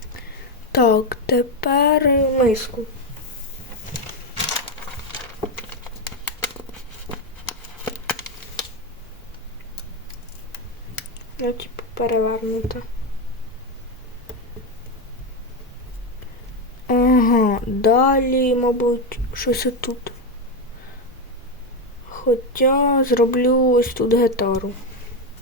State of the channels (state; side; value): normal; both; correlation 0.10